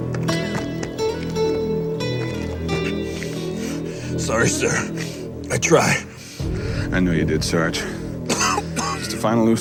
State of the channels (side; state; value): both; identical; correlation 1.00